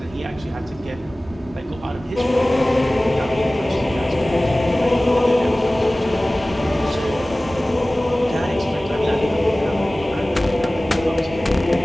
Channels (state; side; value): normal; both; correlation 0.98